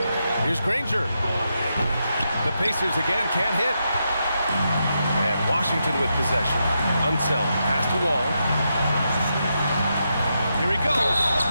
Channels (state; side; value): inverted; both; correlation -0.84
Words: Here's Granger. The Pacers again can't hit. And Washington with possession. Unseld. Pass to Wall. Here he goes.